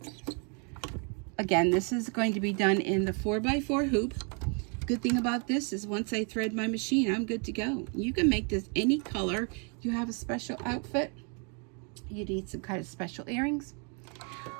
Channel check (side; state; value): left; quieter; 37.2 dB